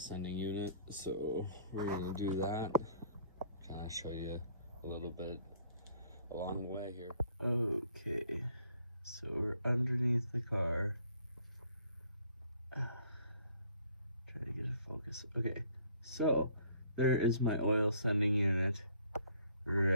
unit. So we're gonna do that. Kind of show you a little bit along the way here. Okay, so we're underneath the car. Trying to get it focused. Okay, so there is my oil sending unit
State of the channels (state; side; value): inverted; both; correlation -0.60